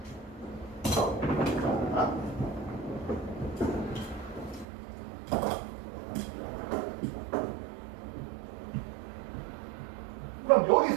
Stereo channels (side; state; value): left; drops out; at 4.7 s